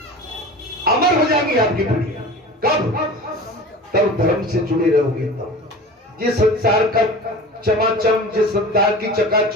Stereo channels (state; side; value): normal; both; correlation 0.36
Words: अमर हो जाएंगी आपकी पीढ़ी। कब? तब धर्म से जुड़े रहोगे। तब ये संसार का चमाचम, जिस संसार की